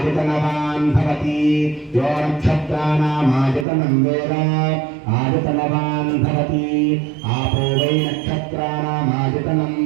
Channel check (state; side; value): drops out; left; at 3.7 s